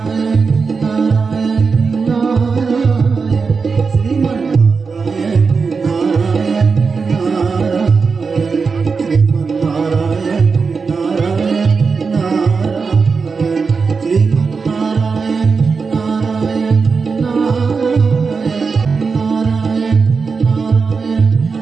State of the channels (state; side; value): quieter; left; 5.0 dB